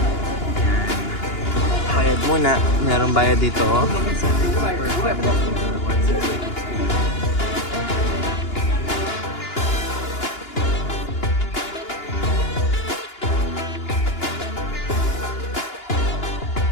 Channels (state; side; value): late; right; 2.9 ms